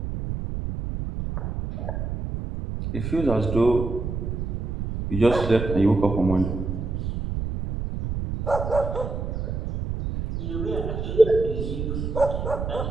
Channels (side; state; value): right; noise; rumble, 4 dB below the sound